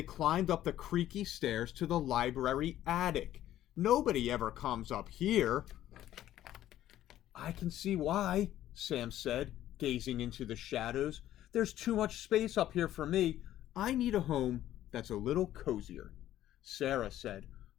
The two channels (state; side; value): quieter; right; 12.9 dB